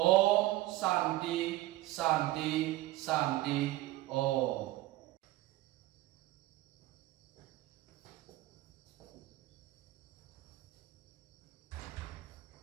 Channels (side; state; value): left; quieter; 17.2 dB